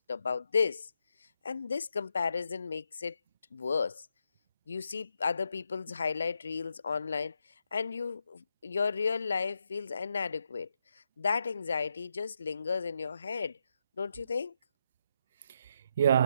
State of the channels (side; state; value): both; inverted; correlation -0.82